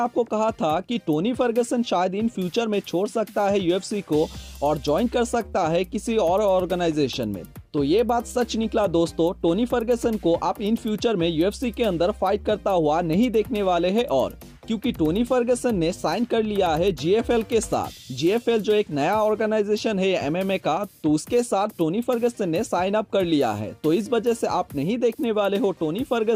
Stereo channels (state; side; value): identical; both; correlation 1.00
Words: कहा था कि टोनी फर्गसन शायद इन फ्यूचर में छोड़ सकता है यूएफसी को और ज्वाइन कर सकता है किसी और ऑर्गेनाइजेशन में। तो ये बात सच निकला दोस्तों। टोनी फर्गसन को आप इन फ्यूचर में यूएफसी के अंदर फाइट करता हुआ नहीं देखने वाले हैं, और क्योंकि टोनी फर्गसन ने साइन कर लिया है जीएफएल के साथ। जीएफएल जो एक नया ऑर्गेनाइजेशन है एमएमए का, तो उसके साथ टोनी फर्गसन ने साइन अप कर लिया है। तो इस वजह से आप नहीं देखने वाले हो टोनी